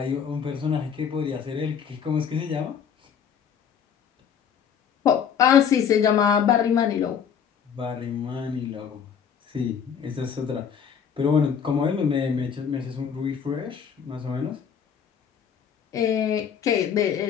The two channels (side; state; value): right; quieter; 7.5 dB